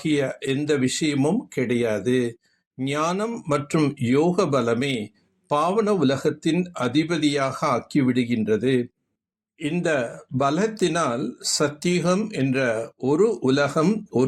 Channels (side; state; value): both; identical; correlation 1.00